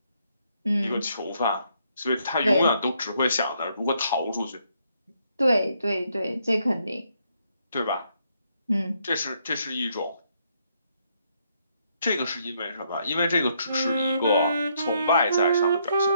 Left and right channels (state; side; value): inverted; both; correlation -0.73